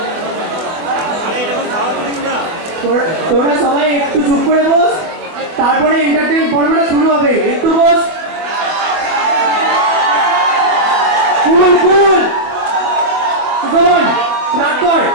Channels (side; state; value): left; late; 24 ms